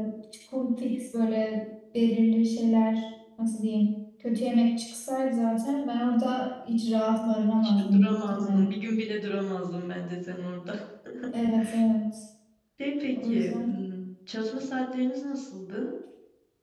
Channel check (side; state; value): both; identical; correlation 1.00